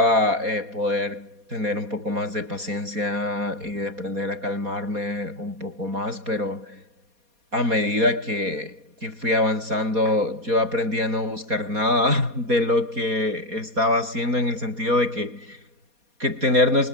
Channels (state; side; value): late; left; 4.2 ms